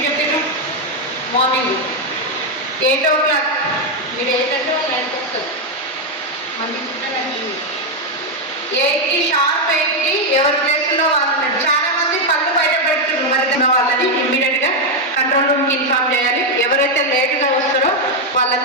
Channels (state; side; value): normal; both; correlation 0.03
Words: చెప్పారు? Morning 8 o'clock. మీరు 8 అంటే 9కి వస్తారు. మన డిసిప్లిన్ 8కి షార్ప్ 8కి ఎవరి ప్లేస్లో వాళ్ళు ఉన్నారు. చాలా మంది పళ్ళు బయట పెడుతున్నారు. మరి వాళ్ళని ఇమ్మీడియట్గా కంట్రోల్ రూమ్కి ఇన్ఫార్మ్ చేయాలి. ఎవరైతే లేటుగా వస్తారో